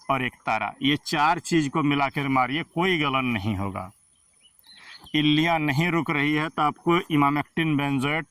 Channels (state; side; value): identical; both; correlation 1.00